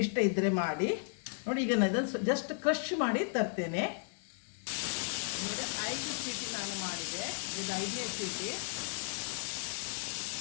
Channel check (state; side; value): silent; right; 55 dB below the other